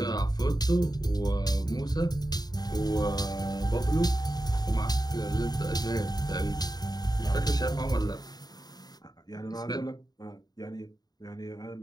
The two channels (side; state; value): right; late; 0.19 ms